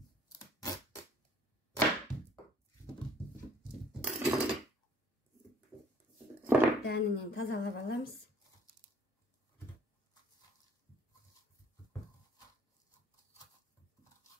Дәнінен тазалап аламыз.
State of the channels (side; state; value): both; normal; correlation 0.57